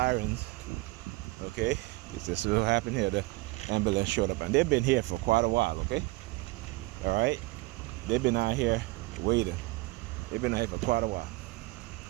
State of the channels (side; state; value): left; quieter; 21.7 dB